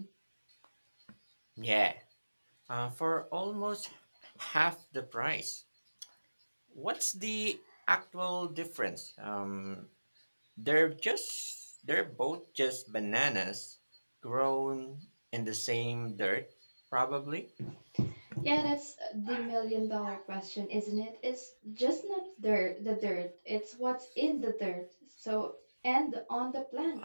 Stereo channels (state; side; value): inverted; both; correlation -1.00